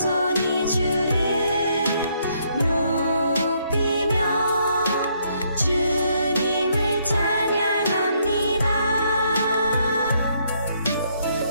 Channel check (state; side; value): inverted; both; correlation -0.72